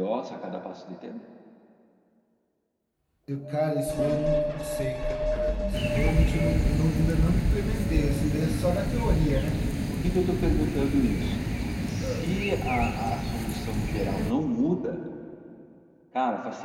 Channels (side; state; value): both; identical; correlation 1.00